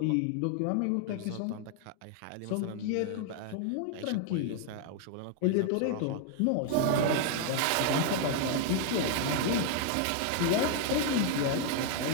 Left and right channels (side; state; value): both; different; correlation 0.00